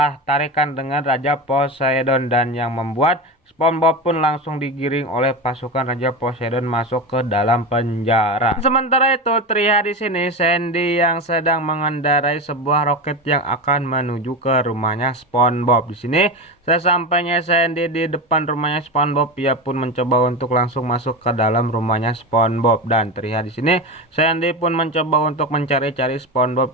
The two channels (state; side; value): normal; both; correlation 0.21